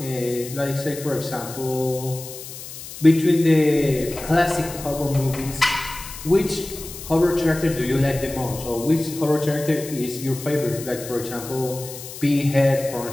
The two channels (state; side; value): noise; left; hiss, 12 dB below the sound